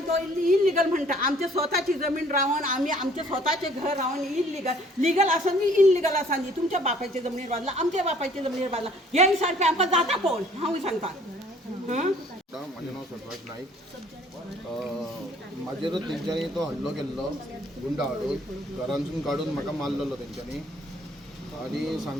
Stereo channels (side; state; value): both; normal; correlation 0.57